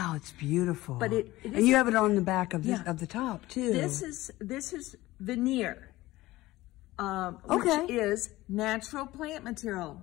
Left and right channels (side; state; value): right; quieter; 17.9 dB